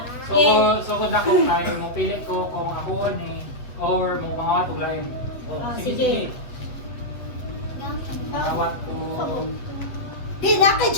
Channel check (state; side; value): late; right; 7.8 ms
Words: So kung ako ay mo pilit ko kung ako ni or mo mga tulayin. Sige. Tawat ko. Di na kay